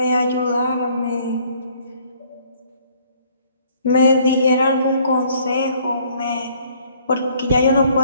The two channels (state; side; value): inverted; both; correlation -0.61